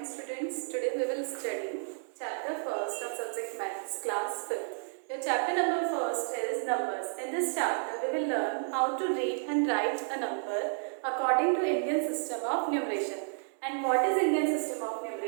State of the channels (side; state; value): left; silent; digital silence